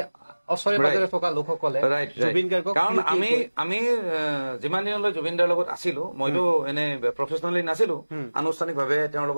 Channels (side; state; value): both; inverted; correlation -1.00